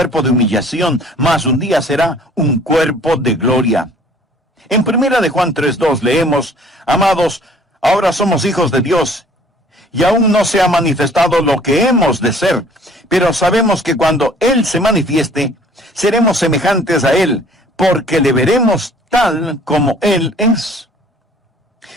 de humillación, mas un día será un cuerpo de gloria. En 1 de Juan 3:2 leemos, amados, ahora somos hijos de Dios, y aún no se ha manifestado lo que hemos de ser, pero sabemos que cuando Él se manifieste, seremos semejantes a Él, porque le veremos tal como Él es.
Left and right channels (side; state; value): both; normal; correlation 0.54